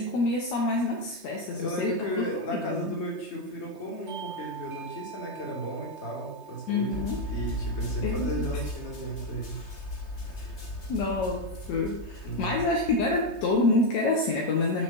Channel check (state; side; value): late; right; 3.2 ms